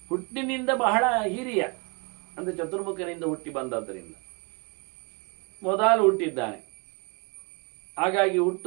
ಹುಟ್ಟಿನಿಂದ ಬಹಳ ಹಿರಿಯ, ಅಂದರೆ ಚತುರ್ಮುಖನಿಂದ ಹುಟ್ಟಿ ಬಂದದ್ದರಿಂದ ಮೊದಲು ಹುಟ್ಟಿದ್ದಾನೆ. ಹಾಗಾಗಿ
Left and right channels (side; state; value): left; quieter; 31.5 dB